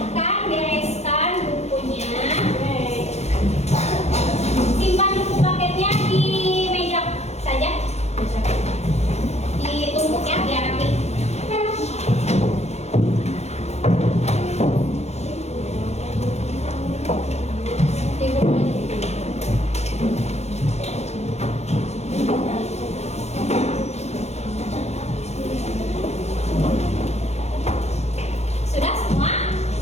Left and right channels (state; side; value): late; right; 0.31 ms